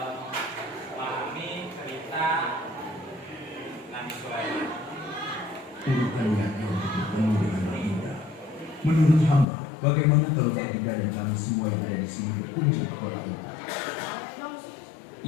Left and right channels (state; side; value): drops out; right; at 9.5 s